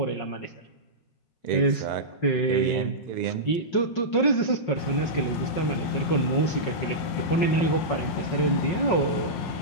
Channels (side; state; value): right; late; 5.4 ms